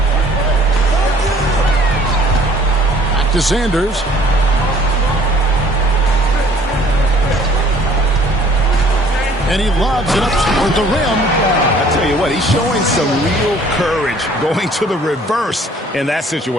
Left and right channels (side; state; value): both; normal; correlation 0.56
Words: Back to Sanders. And he lobs it up toward the rim. I tell you what, he's showing some real courage going to the reverse in that